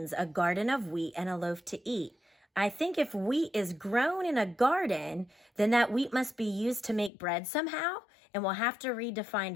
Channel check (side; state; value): right; drops out; at 7.1 s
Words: a garden of wheat and a loaf to eat. I think if wheat is grown in a garden, then that wheat must be used to make bread somehow, and we'll have to read to find